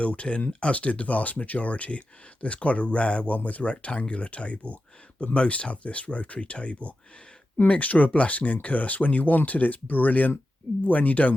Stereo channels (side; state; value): both; normal; correlation 0.91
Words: in, as did the vast majority. There's quite a rare one with a rectangular table, but most have this rotary table. Mixture of blessing and curse. When you want it, it's brilliant. When you don't